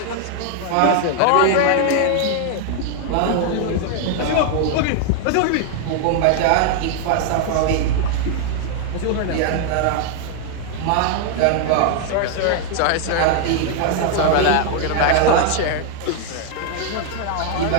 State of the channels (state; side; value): different; both; correlation 0.00